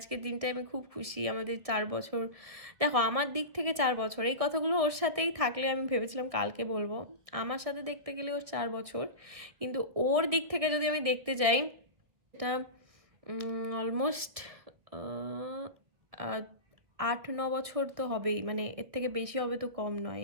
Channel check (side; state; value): left; late; 1.8 ms